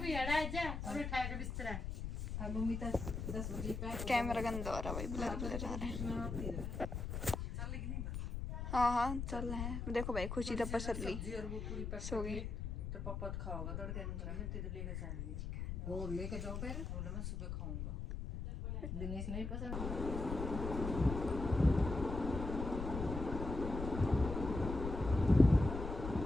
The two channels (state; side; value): noise; left; rumble, 4 dB below the sound